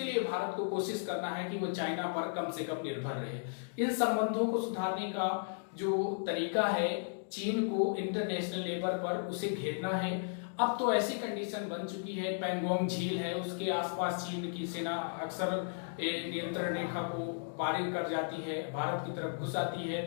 लिए भारत को कोशिश करना है कि वो चाइना पर कम से कम निर्भर रहे। इन संबंधों को सुधारने का जो तरीका है, चीन को इंटरनेशनल लेवल पर उसे घेरना है। अब तो ऐसी कंडीशन बन चुकी है, पैंगोंग झील है उसके आसपास चीन की सेना अक्सर नियंत्रण रेखा को पारी कर जाती है, भारत की तरफ घुस आती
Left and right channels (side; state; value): right; silent; digital silence